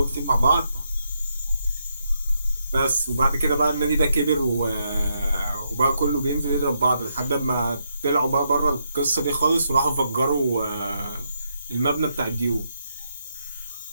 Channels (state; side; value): inverted; both; correlation -0.79